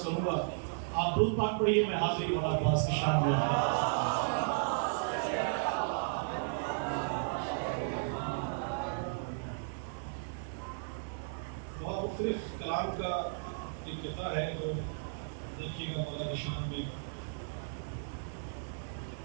کروں گا۔ آپ درود پاک پڑھیے، میں حاضری مولا عباس کی شان میں بہت مختلف کلام کا انقطاع ہے، جو دیکھیے گا مولا کی شان میں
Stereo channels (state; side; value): silent; left; 55 dB below the other